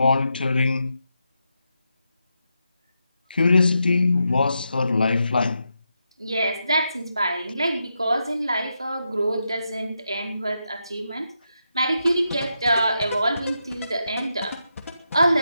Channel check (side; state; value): both; inverted; correlation -0.85